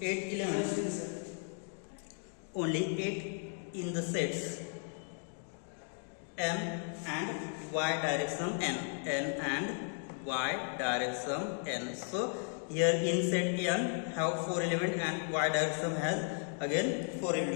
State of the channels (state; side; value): silent; right; 54 dB below the other